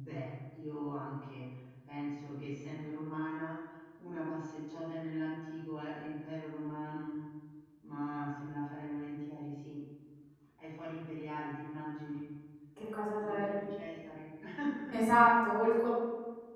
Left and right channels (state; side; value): identical; both; correlation 1.00